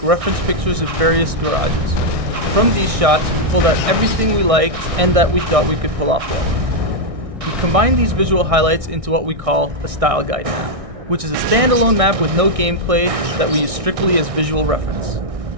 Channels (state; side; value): late; left; 1.6 ms